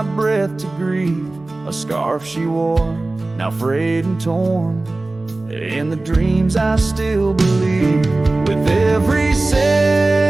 breath to grieve. A scarf she wore, now frayed and torn, in the dreams I still believe. With every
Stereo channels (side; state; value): left; quieter; 3.0 dB